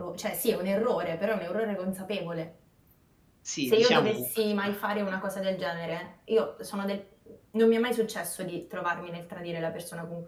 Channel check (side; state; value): both; identical; correlation 1.00